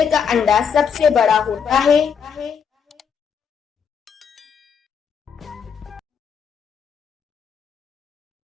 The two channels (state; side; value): quieter; right; 6.8 dB